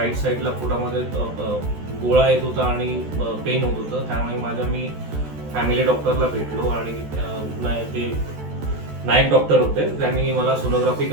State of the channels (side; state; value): left; late; 14 ms